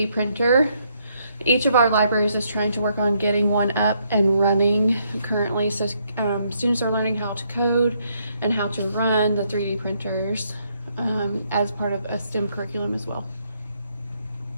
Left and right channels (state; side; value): inverted; both; correlation -0.73